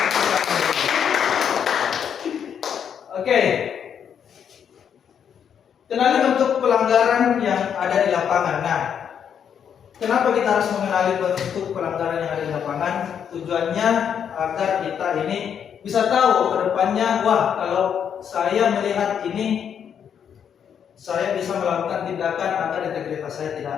Oke. Kenali bentuk pelanggaran yang ada di lapangan. Nah, kenapa kita harus mengenali bentuk pelanggaran yang ada di lapangan? Tujuannya agar kita ini bisa tahu ke depannya, wah kalau saya melihat ini, saya bisa melakukan tindakan agar integritas saya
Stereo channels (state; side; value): quieter; right; 8.1 dB